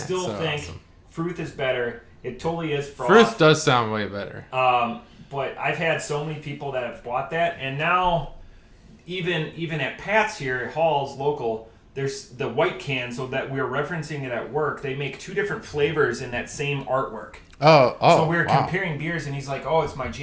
think awesome. fruth is better. It totally is froth. Fruth does sound way better. But I've had so many people that have bought that, and now even at Pat's here at Hall's local, there's the white can, so that we're referencing it at work. They make 2 different flavors in that same artwork. Oh. So we were comparing beers, and he's like, "Oh, it's my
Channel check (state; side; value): identical; both; correlation 1.00